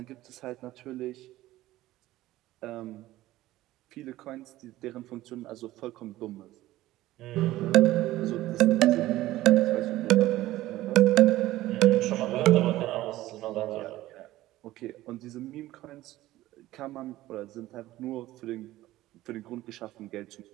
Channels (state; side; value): quieter; left; 16.1 dB